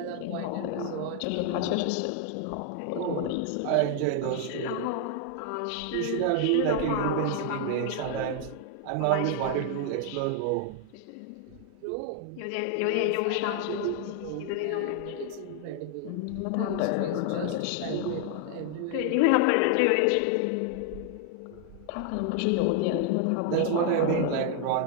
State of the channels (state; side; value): different; both; correlation 0.00